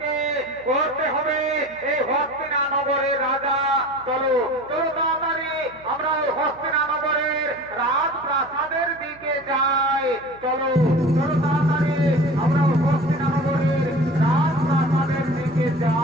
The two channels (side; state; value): right; noise; hum, 26 dB below the sound